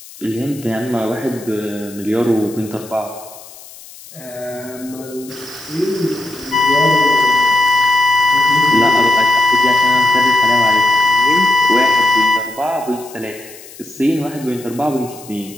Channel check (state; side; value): noise; left; hiss, 19 dB below the sound